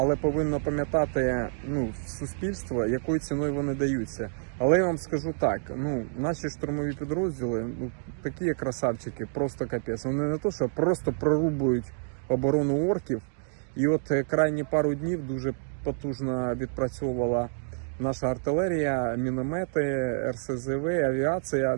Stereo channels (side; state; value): left; silent; digital silence